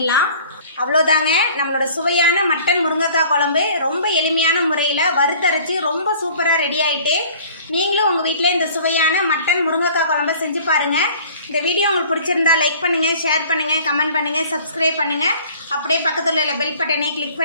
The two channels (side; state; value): both; inverted; correlation -0.49